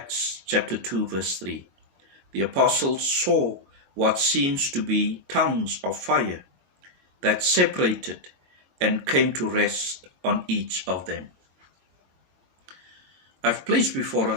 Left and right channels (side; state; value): left; late; 22 ms